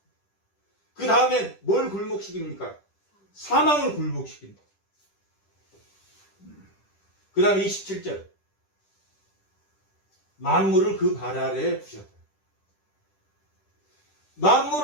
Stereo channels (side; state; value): right; late; 10 ms